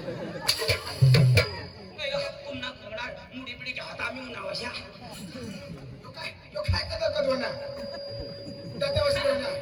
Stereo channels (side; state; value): both; identical; correlation 1.00